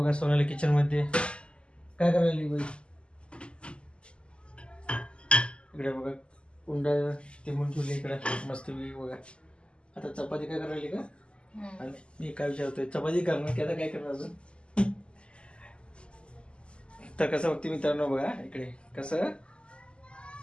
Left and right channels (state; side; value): late; right; 0.053 ms